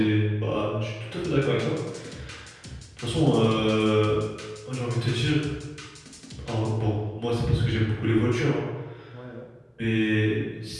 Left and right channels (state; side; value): identical; both; correlation 1.00